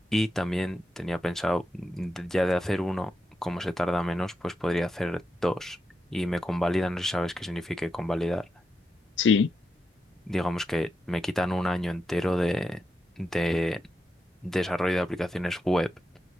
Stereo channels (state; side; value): normal; both; correlation 0.87